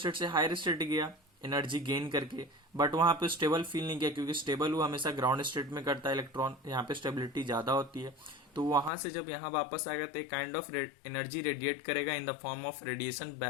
से हायर स्टेट गया एनर्जी गेन करके, बट वहां पे स्टेबल फील नहीं किया, क्योंकि स्टेबल वो हमेशा ग्राउंड स्टेट में करता है इलेक्ट्रॉन, यहाँ पे स्टेबिलिटी ज्यादा होती है। तो वहां से जब यहाँ वापस आएगा तो एक काइंड ऑफ एनर्जी रेडिएट करेगा in the form of radiation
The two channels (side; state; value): right; drops out; at 8.9 s